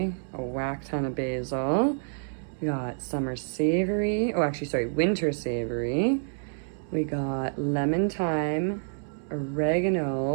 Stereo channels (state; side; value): silent; left; digital silence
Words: a whack ton of basil. We got winter savory. We got lemon thyme,